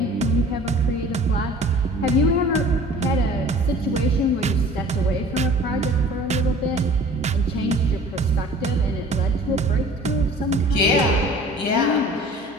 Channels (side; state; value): both; normal; correlation 0.47